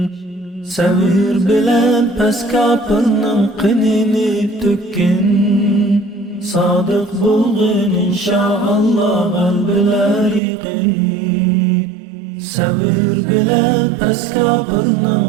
Sabır bilen pes kapının qinini tökkin, sadık bulgin inşallah qalbiler yiqin. Sabır bilen pes kapının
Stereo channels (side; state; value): left; drops out; at 10.4 s